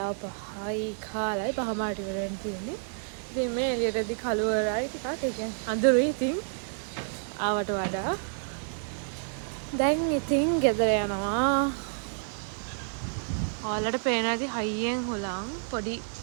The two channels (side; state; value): left; silent; 58 dB below the other